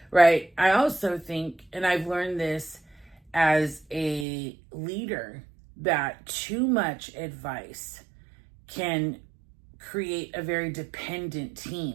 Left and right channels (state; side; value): drops out; left; at 4.2 s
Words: Right? I also think, and I've learned this as a leader, that too much advice can create a very dependent